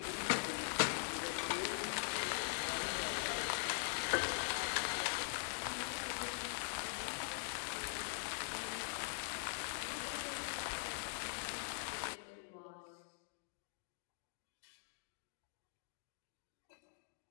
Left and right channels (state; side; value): silent; right; digital silence